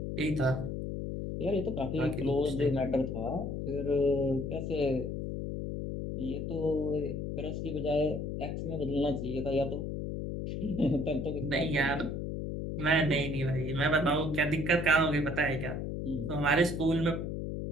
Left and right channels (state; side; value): noise; left; hum, 4 dB below the sound